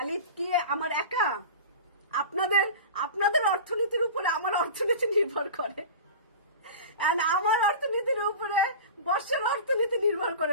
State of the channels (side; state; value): both; inverted; correlation -0.33